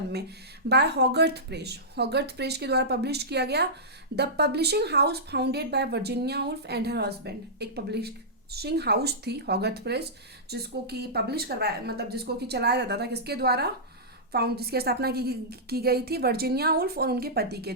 में बाय हॉगर्थ प्रेस। हॉगर्थ प्रेस के द्वारा पब्लिश किया गया। The publishing house founded by Virginia wolf and her husband. एक पब्लिशिंग हाउस थी हॉगर्थ प्रेस, जिसको कि पब्लिश करवाया, मतलब जिसको कि चलाया जाता था किसके द्वारा? जिसकी स्थापना की गई थी वर्जीनिया वुल्फ और उनके पति के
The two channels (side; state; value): both; normal; correlation -0.15